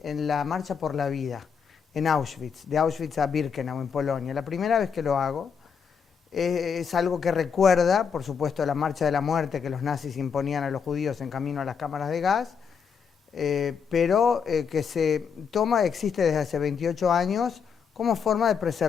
la Marcha por la Vida, en Auschwitz, de Auschwitz a Birkenau, en Polonia. La primera vez que lo hago, es algo que recuerda, por supuesto, la Marcha de la Muerte que los nazis imponían a los judíos en camino a las cámaras de gas, pero que existe desde hace 28 años como forma de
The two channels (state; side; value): quieter; right; 6.6 dB